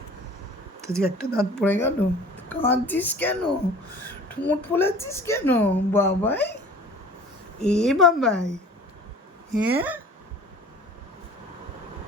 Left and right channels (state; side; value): normal; both; correlation 0.45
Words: তো যে একটা দাঁত পড়ে গেল, কাঁদছিস কেন, ঠোঁট ফোলাচ্ছিস কেন বাবাই? এ বাবাই, হ্যাঁ